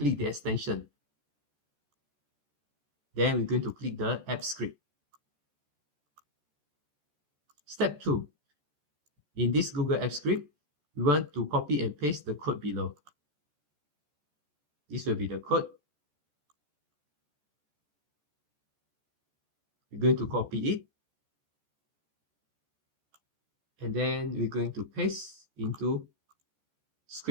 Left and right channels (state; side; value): late; left; 14 ms